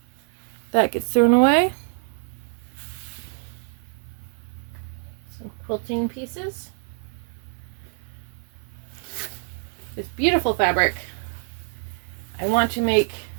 That gets thrown away. Some quilting pieces. This beautiful fabric. I want to make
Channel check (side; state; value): left; silent; 61 dB below the other